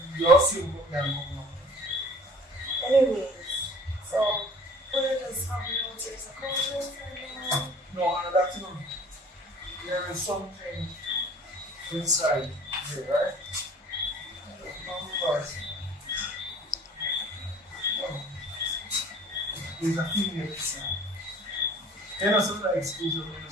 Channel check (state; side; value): normal; both; correlation 0.48